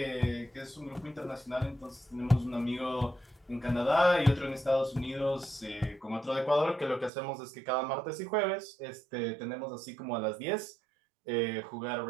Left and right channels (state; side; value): drops out; left; at 7.1 s